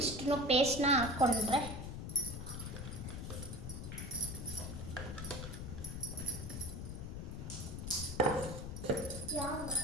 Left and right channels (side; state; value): left; noise; rumble, 6 dB below the sound